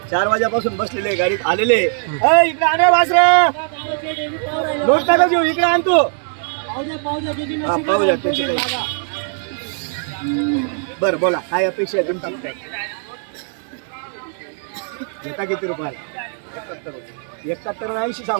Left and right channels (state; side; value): silent; left; 58 dB below the other